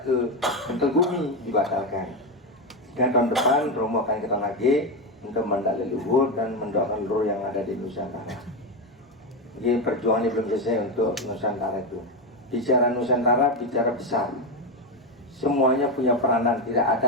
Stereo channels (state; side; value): normal; both; correlation 0.11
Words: ke Mentegumi dibatalkan. Dan tahun depan Romo akan ke Tanah Ki untuk mendak leluhur dan mendoakan leluhur yang ada di Nusantara. Jadi perjuangan ini belum selesai untuk Nusantara itu. Bicara Nusantara, bicara besar. Semuanya punya peranan. Tidak